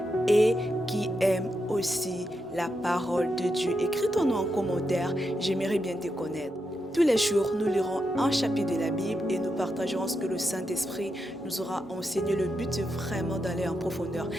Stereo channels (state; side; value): normal; both; correlation 0.85